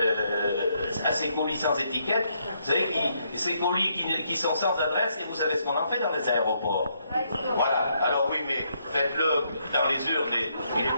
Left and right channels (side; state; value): both; inverted; correlation -0.75